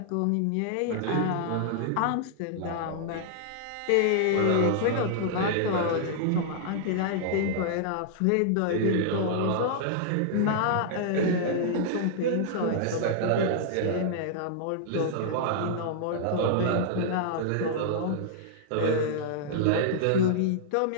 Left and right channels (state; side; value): different; both; correlation -0.01